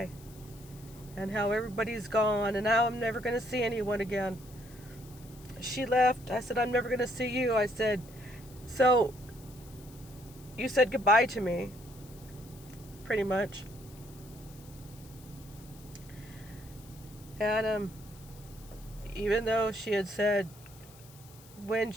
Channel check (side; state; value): left; noise; hiss, 22 dB below the sound